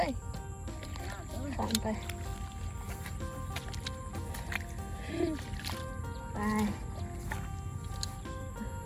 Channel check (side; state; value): both; identical; correlation 1.00